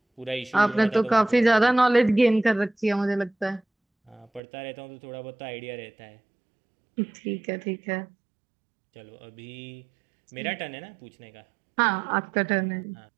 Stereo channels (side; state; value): left; drops out; at 4.4 s